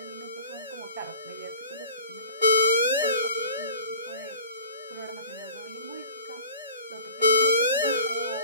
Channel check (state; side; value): inverted; both; correlation -0.43